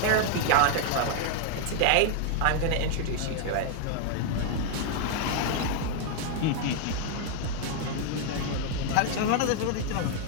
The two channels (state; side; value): different; both; correlation 0.00